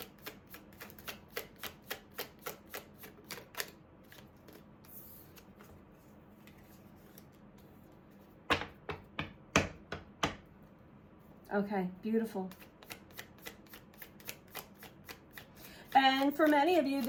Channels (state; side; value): identical; both; correlation 1.00